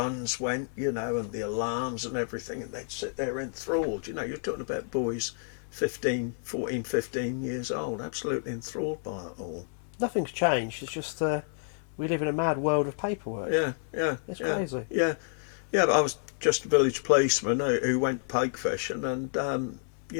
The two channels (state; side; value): silent; right; digital silence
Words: went, and the alarms and everything, and they'd sit there enthralled. You're talking about boys 14, 15 years old, absolutely enthralled by it all. Nothing's changed. It's just we live in a mad world of paperwork. Yeah. It's crazy. Yeah, but I was just a village policeman who went pike fishing, and